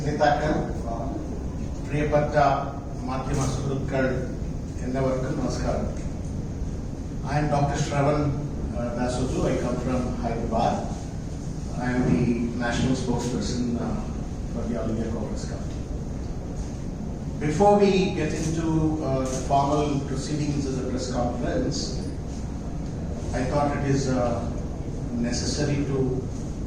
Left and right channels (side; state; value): both; identical; correlation 1.00